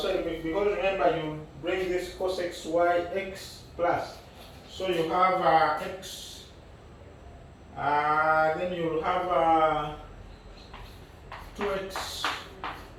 because remember you bring this cos xy x plus, so you have x, then you'll have 2x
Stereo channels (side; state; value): both; identical; correlation 1.00